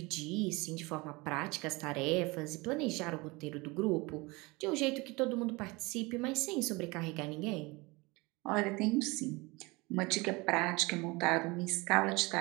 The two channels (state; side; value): quieter; left; 24.5 dB